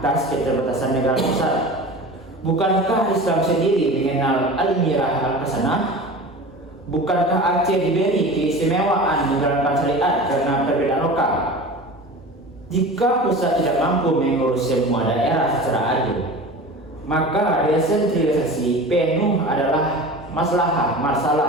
keterbatasan negara besar. Bukankah Islam sendiri mengenal al-mirah al-qasanah? Bukankah Aceh diberi keistimewaan menjalankan syariat karena perbedaan lokal? Jika pusat tidak mampu mengurus semua daerah secara adil, maka desentralisasi penuh adalah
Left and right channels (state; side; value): normal; both; correlation 0.35